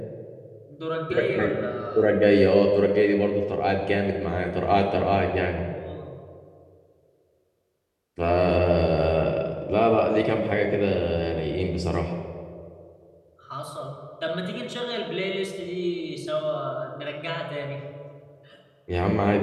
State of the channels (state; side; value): identical; both; correlation 1.00